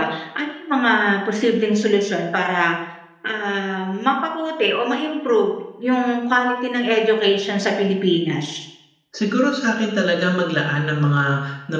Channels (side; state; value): both; identical; correlation 1.00